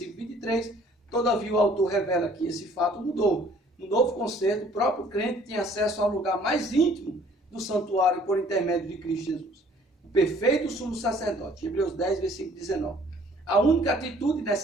23, todavia o autor revela que esse fato mudou. No novo concerto, o próprio crente tinha acesso ao lugar mais íntimo do santuário por intermédio de Cristo Jesus. O perfeito sumo sacerdote, Hebreus 10, versículo 19. A única atitude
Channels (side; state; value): both; normal; correlation 0.57